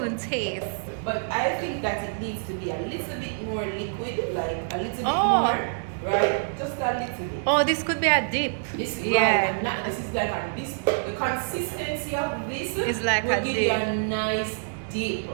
taste. But I think that it needs to be a little bit more liquid, like a little bit more. Right? Just a little bit. Oh, this could be a dip. This, yeah. Right, not, this is like a, this, the consistency of this is like will a give dip. you a nice dip.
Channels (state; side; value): silent; left; digital silence